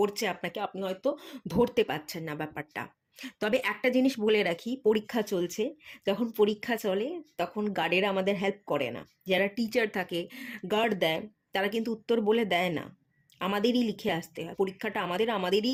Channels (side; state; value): both; identical; correlation 1.00